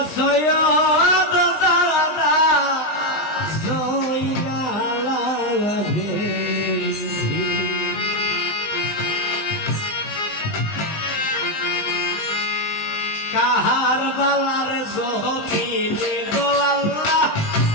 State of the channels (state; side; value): late; right; 19 ms